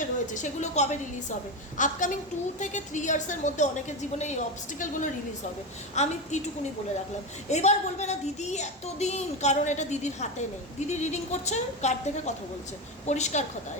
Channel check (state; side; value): normal; both; correlation 0.16